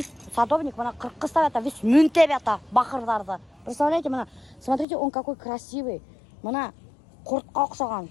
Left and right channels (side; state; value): right; drops out; at 4.9 s